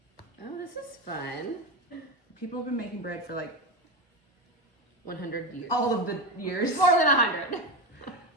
Oh, this is fun. People have been making bread for like 100 years. all of the years. More than 100.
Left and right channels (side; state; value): right; late; 1.1 ms